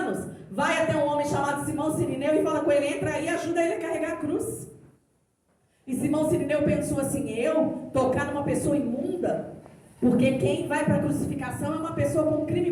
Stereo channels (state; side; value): identical; both; correlation 1.00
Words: vai até um homem chamado Simão Sirineu e fala com ele, entra aí e ajuda ele a carregar a cruz. E Simão Sirineu pensou assim, eu tocar numa pessoa imunda? Porque quem vai para a crucificação é uma pessoa com um crime